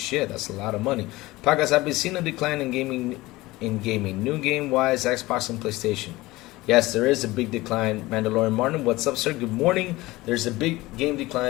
that's a lot of money. Podcast, I've been seeing a decline in gaming. New game-wise, Xbox and PlayStation. Yes, there is a big decline. Mandalorian Martin, what's up, sir? Good morning. There's a big game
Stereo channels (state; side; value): quieter; right; 19.6 dB